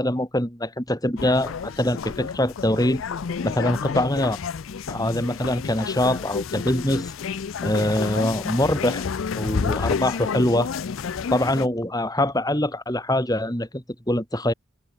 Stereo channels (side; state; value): both; normal; correlation 0.67